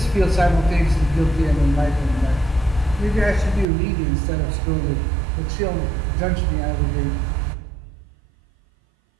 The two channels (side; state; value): left; drops out; at 3.7 s